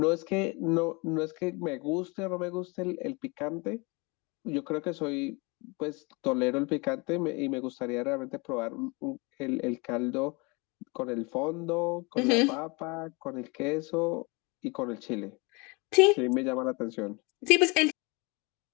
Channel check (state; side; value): quieter; right; 28.3 dB